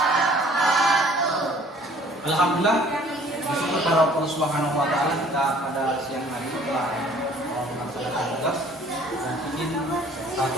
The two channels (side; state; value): both; normal; correlation 0.54